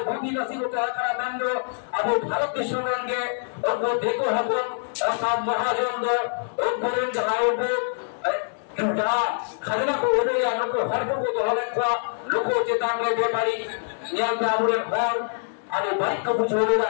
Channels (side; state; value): right; silent; digital silence